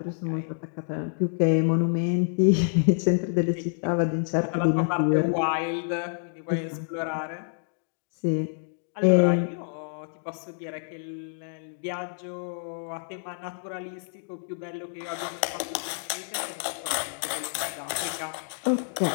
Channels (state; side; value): silent; right; digital silence